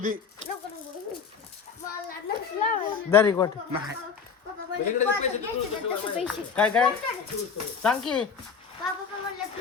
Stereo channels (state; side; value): quieter; right; 6.1 dB